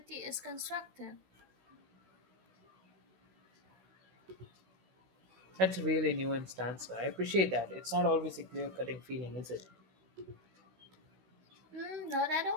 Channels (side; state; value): left; late; 16 ms